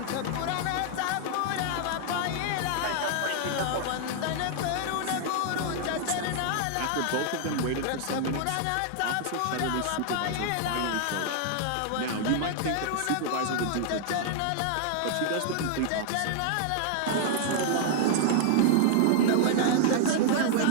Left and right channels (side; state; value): both; different; correlation 0.00